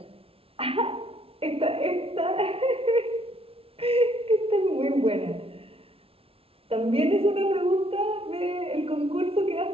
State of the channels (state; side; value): late; left; 0.27 ms